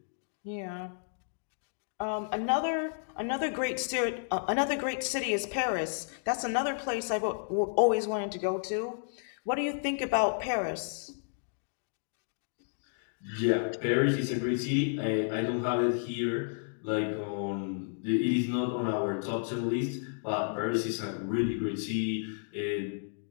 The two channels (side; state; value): right; silent; digital silence